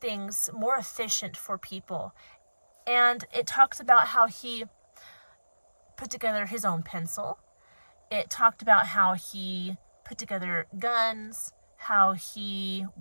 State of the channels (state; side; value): inverted; both; correlation -1.00